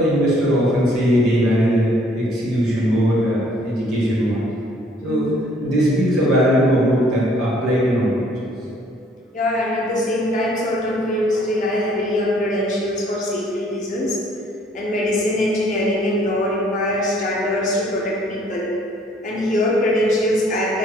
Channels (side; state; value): both; normal; correlation 0.61